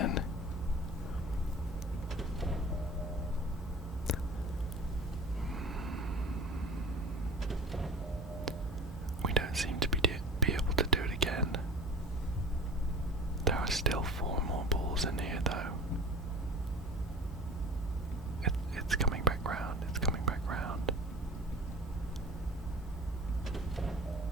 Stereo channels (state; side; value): normal; both; correlation 0.38